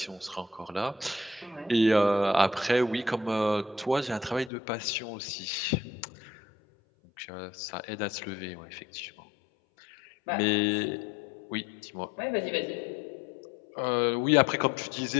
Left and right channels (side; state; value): right; drops out; at 4.5 s